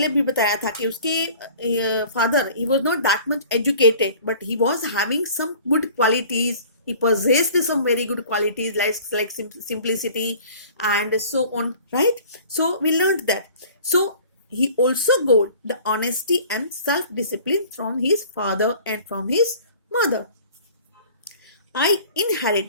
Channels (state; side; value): inverted; both; correlation -0.48